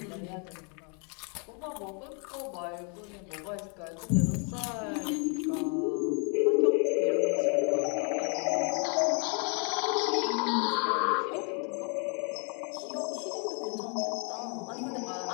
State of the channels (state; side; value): quieter; right; 37.7 dB